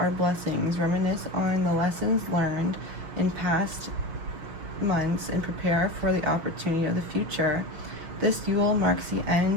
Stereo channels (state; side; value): late; left; 6.2 ms